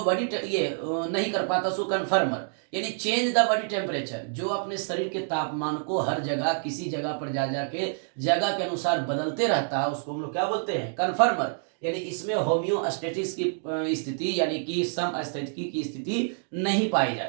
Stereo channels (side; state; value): left; silent; digital silence